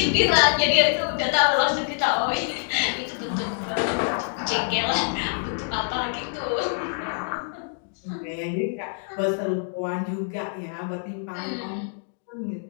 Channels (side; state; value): right; silent; digital silence